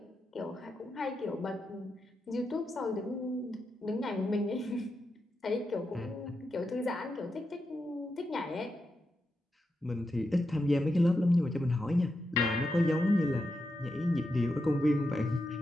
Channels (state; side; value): normal; both; correlation 0.87